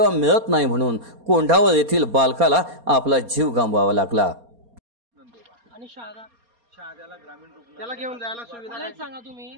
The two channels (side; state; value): left; late; 4.3 ms